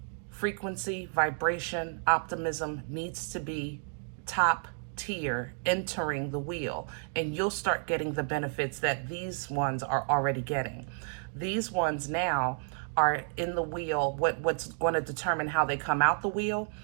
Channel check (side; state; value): left; silent; 57 dB below the other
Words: frequency, vibration, optimism needs to be top tier entering the wheel, and you'll start getting the benefits that these ones are already getting. These ones now are in the wheel. What's going to determine how they come out the wheel